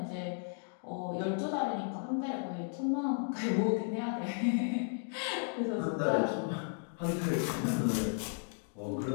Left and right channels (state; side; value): silent; right; 55 dB below the other